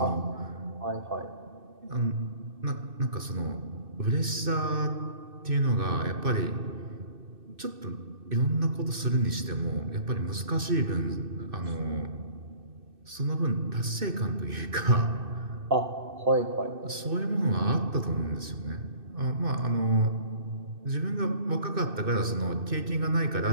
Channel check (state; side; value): late; left; 2.6 ms